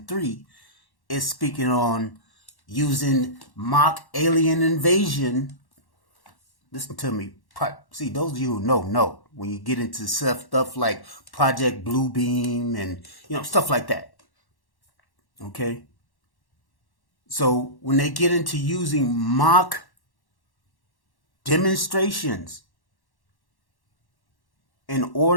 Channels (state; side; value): late; right; 1.1 ms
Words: 3, is speaking on using mock alien invasion. Listen to me. See, those of you who know when you get into stuff like Project Bluebeam and stuff like that. Okay? So when they get into using mock demonstrations in